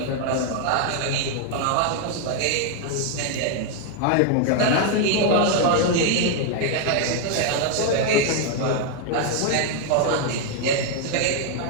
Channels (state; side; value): different; both; correlation 0.00